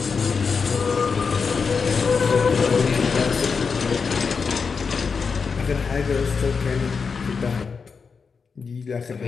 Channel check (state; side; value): quieter; right; 5.4 dB